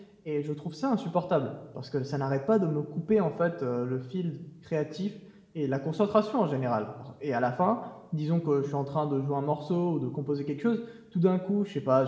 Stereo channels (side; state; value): both; identical; correlation 1.00